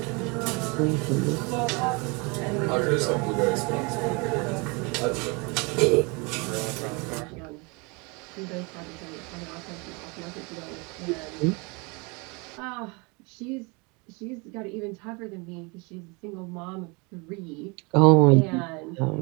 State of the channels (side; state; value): left; quieter; 29.4 dB